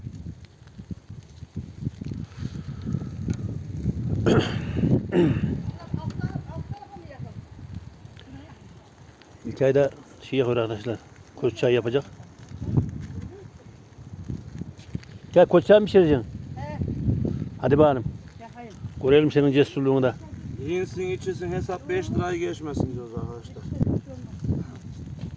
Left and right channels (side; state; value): both; identical; correlation 1.00